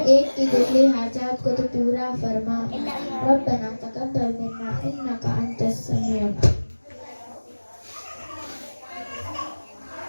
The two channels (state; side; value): inverted; both; correlation -1.00